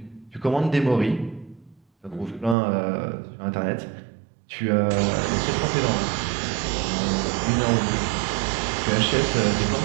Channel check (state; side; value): drops out; left; at 2.6 s